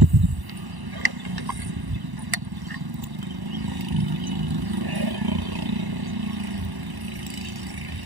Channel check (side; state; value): left; late; 1.1 ms